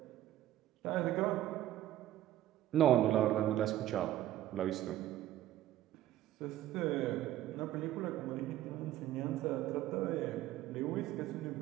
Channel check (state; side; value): quieter; left; 13.6 dB